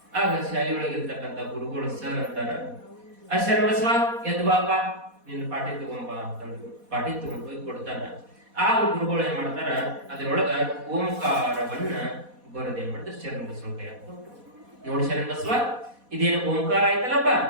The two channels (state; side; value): late; left; 4.1 ms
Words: ಆಗ ಶಾಲೆಯೊಳಗಿರ್ತಕ್ಕಂಥ ಗುರುಗಳು ಸರ್ ಅಂತಾರ, ಆ ಶರಣ ಬಸವ ಎದ್ದು ಬಾಪ, ನಿನ್ನ ಪಾಠಿ ತಗೊಂಬ ಅಂತಂದ್ರು. ಪಾಠಿ ತಗೊಂಡ್ ಹೋಗಿ ಕೊಡ್ತಾನ. ಆ ಗುರುಗಳು ಏನ್ ಮಾಡ್ತಾರ, ಅದರೊಳಗ ಓಂಕಾರವನ್ನ ಬರೋದೇನ್ ಮಾಡ್ತಾರೆ, ಶರಣ ಬಸವನ ಕೈ ಹಾಕ್ಕೊಟ್ರು. ನೋಡಿ ಶರಣ ಬಸವ, ಇದೇನು ಓಂಕಾರ ಆಯ್ತಲ್ಲಪ್ಪ,